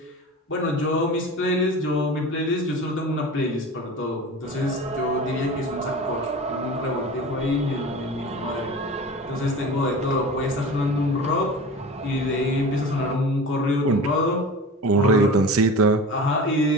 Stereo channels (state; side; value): normal; both; correlation 0.34